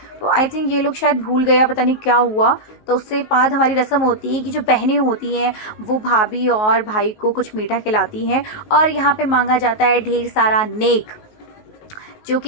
तो आई थिंक ये लोग शायद भूल गया, पता नहीं क्या हुआ। तो उससे बाद हमारी रस्म होती है कि जो बहनें होती हैं वो भाभी और भाई को कुछ मीठा खिलाती हैं, और यहाँ पे मांगा जाता है ढेर सारा नेक, जो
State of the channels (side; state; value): right; late; 19 ms